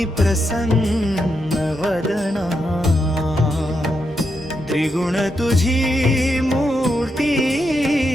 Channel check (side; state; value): both; normal; correlation 0.83